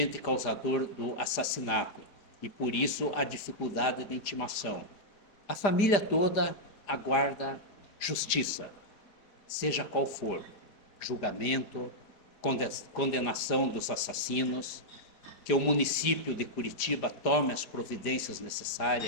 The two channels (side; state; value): right; late; 5.0 ms